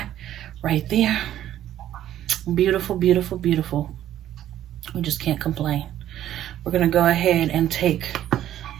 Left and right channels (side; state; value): left; quieter; 12.0 dB